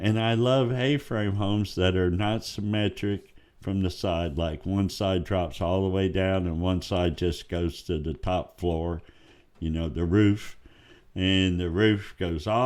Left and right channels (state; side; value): identical; both; correlation 1.00